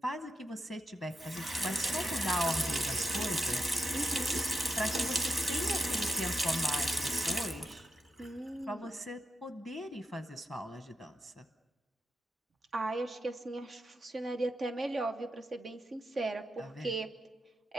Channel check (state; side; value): normal; both; correlation 0.85